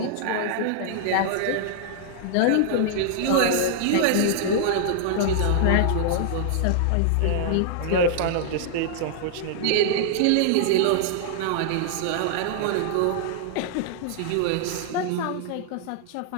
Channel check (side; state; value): both; different; correlation -0.01